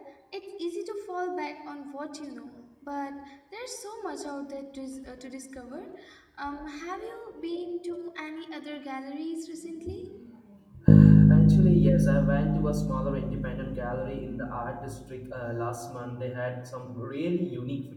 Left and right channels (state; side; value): identical; both; correlation 1.00